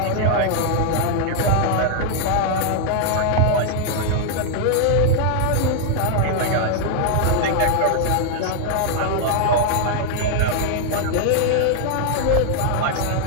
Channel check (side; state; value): both; different; correlation 0.00